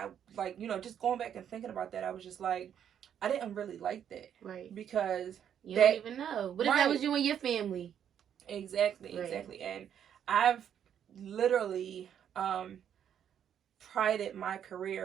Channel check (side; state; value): left; quieter; 9.1 dB